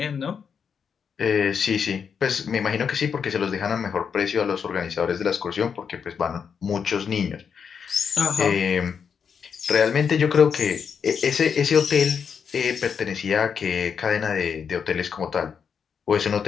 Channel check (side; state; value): right; quieter; 6.7 dB